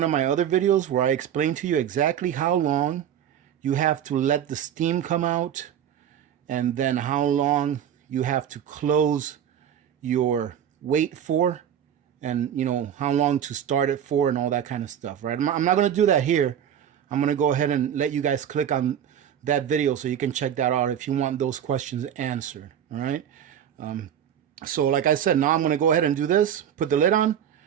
of my other videos where I explain to you exactly how long you have to let the steam come out, and then how long you have to close your weight for, and you know how long to start it for, and all that kind of stuff, right? I'm not going to do that here. I'm going to go ahead and let you guys click on that video so you can check that out if you want those questions answered. All right. So like I said, now I'm going to go ahead and do this, put the lid on,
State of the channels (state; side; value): quieter; left; 9.5 dB